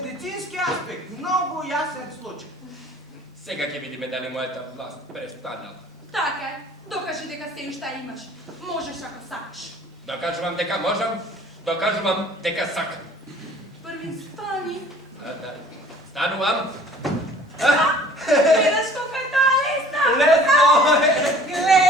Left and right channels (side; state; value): both; normal; correlation 0.51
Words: аспект. Многу јасен случај. Сега ќе видиме дали мојата власт престанала. Така е. Докажи дека се уште имаш. Можеш ако сакаш. Докажувам дека можам, докажувам дека сакам. Први стани. Да. Станувам. Гледаш колко е тоа лесно. Лесно